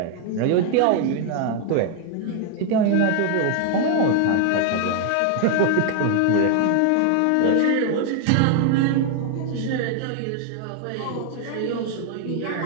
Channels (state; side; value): different; both; correlation 0.00